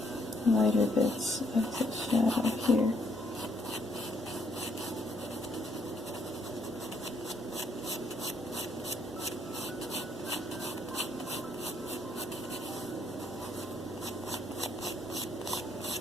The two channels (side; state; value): both; normal; correlation 0.69